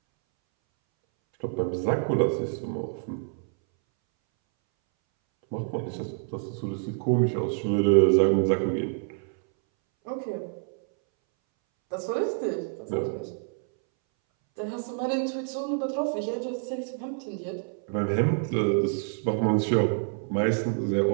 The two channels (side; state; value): left; silent; 60 dB below the other